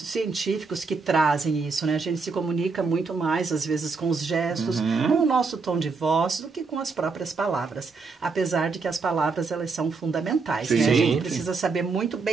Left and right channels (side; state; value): left; quieter; 4.5 dB